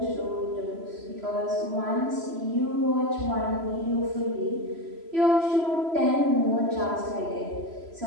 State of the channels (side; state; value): left; late; 3.0 ms